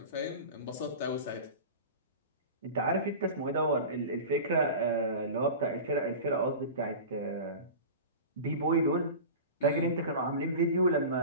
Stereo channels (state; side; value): inverted; both; correlation -0.32